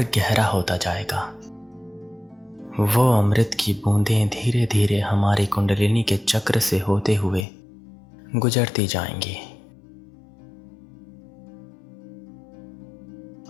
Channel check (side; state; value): right; drops out; at 7.5 s